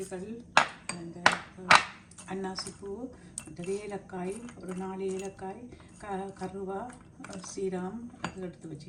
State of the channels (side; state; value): both; identical; correlation 1.00